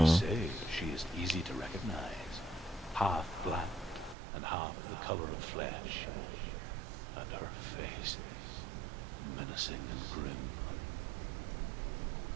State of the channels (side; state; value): left; drops out; at 4.2 s